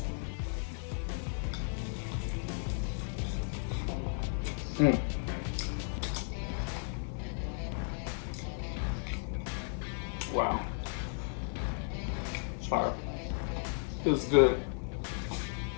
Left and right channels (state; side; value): silent; right; 55 dB below the other